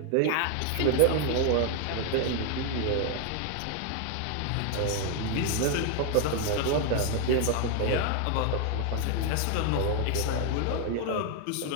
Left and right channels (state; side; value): different; both; correlation 0.00